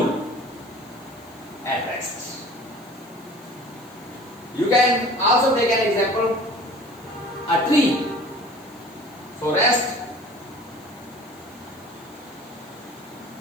at rest. You can also take an example, a tree. So rest,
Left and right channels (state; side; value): noise; left; hiss, 26 dB below the sound